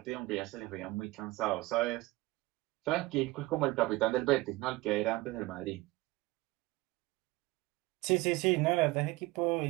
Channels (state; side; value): quieter; left; 20.4 dB